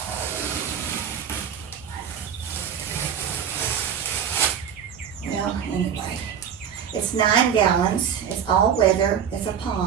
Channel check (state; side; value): quieter; left; 8.2 dB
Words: Well, anyway, it's 9 gallons. It's all weather. It's a